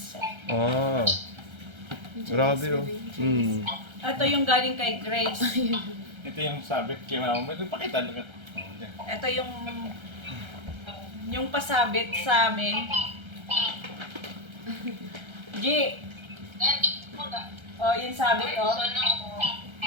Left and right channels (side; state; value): left; late; 1.3 ms